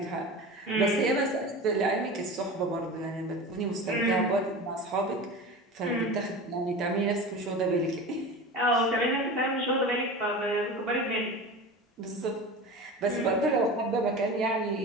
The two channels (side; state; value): both; normal; correlation 0.31